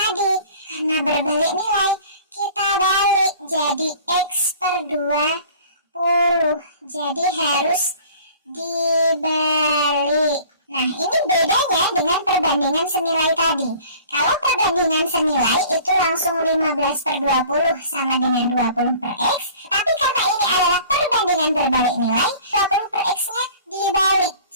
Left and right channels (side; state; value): both; inverted; correlation -0.48